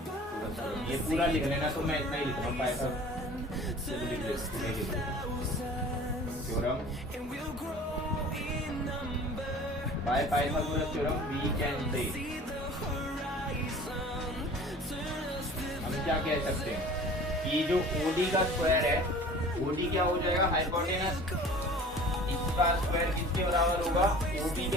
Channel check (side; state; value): both; normal; correlation 0.44